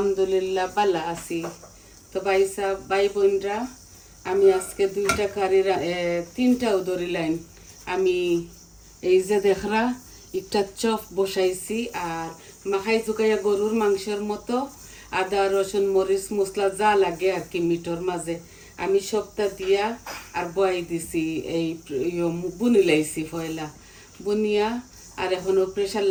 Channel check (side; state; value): both; identical; correlation 1.00